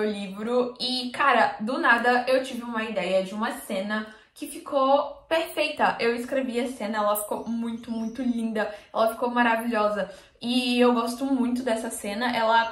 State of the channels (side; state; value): both; identical; correlation 1.00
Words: livro e, cara, do nada eu tive uma ideia de uma cena que ficou perfeita. Eu escrevi a cena, ela ficou muito, muito linda, ela ficou maravilhosa. E eu gosto muito dessa cena, ela